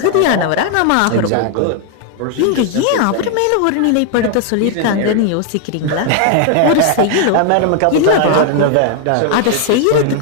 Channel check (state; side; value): different; both; correlation 0.00